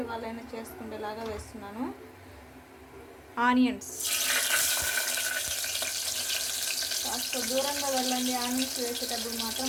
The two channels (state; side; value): identical; both; correlation 1.00